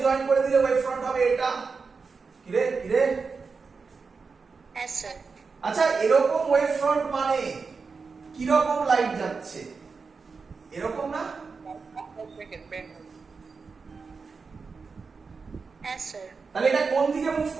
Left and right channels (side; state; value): left; quieter; 4.8 dB